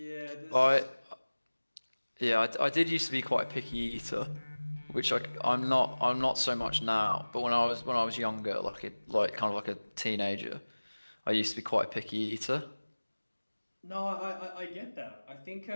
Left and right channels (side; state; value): both; inverted; correlation -1.00